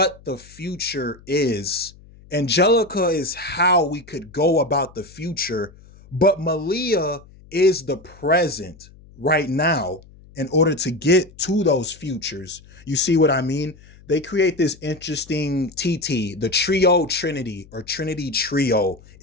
the future is, Angelica is how we could go about the future, but Malia is the present right now in order to get to those futures. You see what I mean? They create this interesting TT, the trio trinity or trinity trio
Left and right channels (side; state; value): left; noise; hum, 23 dB below the sound